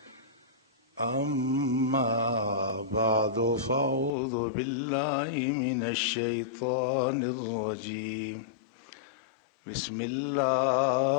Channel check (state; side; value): drops out; right; at 4.1 s